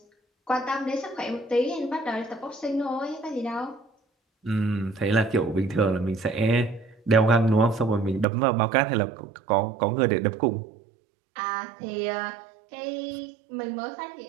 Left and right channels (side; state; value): left; drops out; at 8.2 s